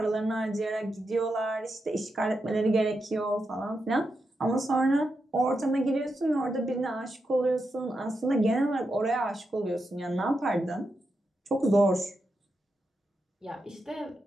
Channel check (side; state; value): both; normal; correlation 0.86